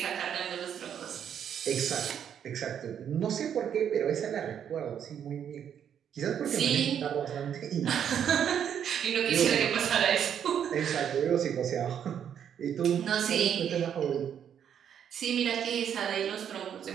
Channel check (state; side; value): quieter; left; 8.8 dB